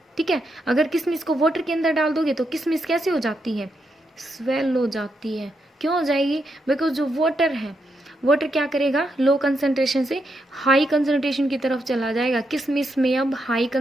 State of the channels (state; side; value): normal; both; correlation 0.82